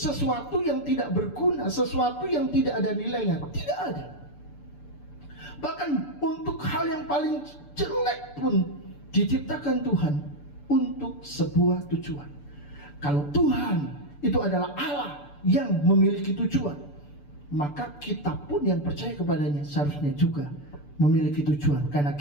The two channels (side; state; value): right; late; 6.9 ms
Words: yang tidak berguna, sesuatu yang tidak ada nilainya. Tidak ada. Bahkan untuk hal yang paling jelek pun diciptakan Tuhan untuk sebuah tujuan. Kalau Tuhan itu adalah Allah yang memiliki tujuan, maka kita pun yang percaya kepadanya seharusnya juga memiliki tujuan, karena